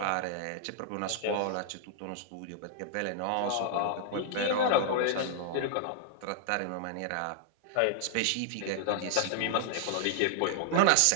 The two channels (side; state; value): both; different; correlation -0.01